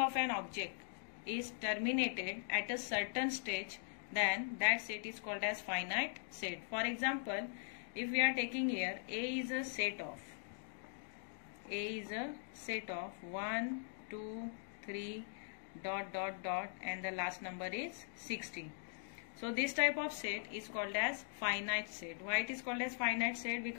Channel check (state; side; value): silent; right; digital silence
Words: an object is terminated at a certain stage, then that set is called as finite set. For example, if we are taking here A is a set of 1, 2, 3, ... and the last number is 60. So this type of set is called as finite set. Why it is called as finite set?